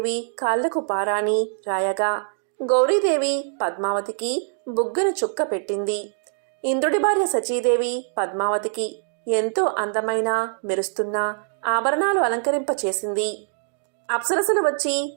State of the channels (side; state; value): left; silent; digital silence